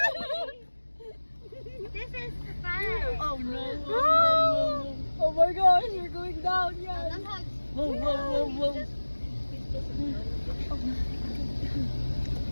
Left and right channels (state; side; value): inverted; both; correlation -1.00